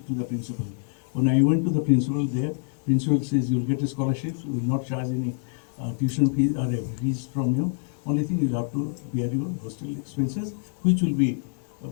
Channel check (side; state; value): right; silent; digital silence